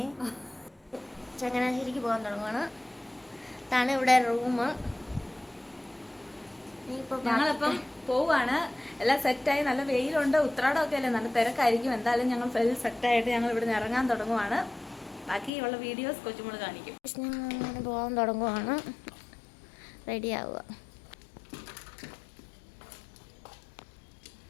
ചങ്ങനാശ്ശേരിക്ക് പോകാൻ തുടങ്ങുവാണ്. ഇതാണ് ഇവിടെ റൂം. ഞങ്ങളിപ്പം പോവാണ്. എല്ലാം സെറ്റായി. നല്ല വെയിലുണ്ട്, ഉത്രാടമൊക്കെ അല്ലേ, നല്ല തിരക്കായിരിക്കും. എന്തായാലും ഞങ്ങൾ ഫുൾ സെറ്റായിട്ട് ഞങ്ങൾ ഇവിടെ നിന്ന് ഇറങ്ങാൻ തുടങ്ങുവാണ്. ബാക്കിയുള്ള വീഡിയോസ് കൊച്ചുമോള് കാണിക്കും. ഞങ്ങൾ പോകാൻ തുടങ്ങുവാണ്. റെഡി ആവുക.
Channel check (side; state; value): right; drops out; at 15.5 s